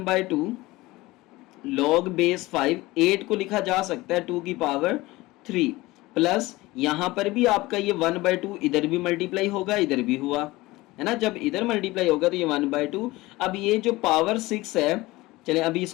log बेस 5, 8 को लिखा जा सकता है 2 की पावर 3, प्लस यहाँ पर भी आपका ये 1/2 इधर भी मल्टीप्लाई होगा, इधर भी हुआ है ना, जब इधर मल्टीप्लाई होगा तो ये 1/2। अब ये जो पावर 6 है, चले अभी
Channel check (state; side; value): quieter; right; 19.9 dB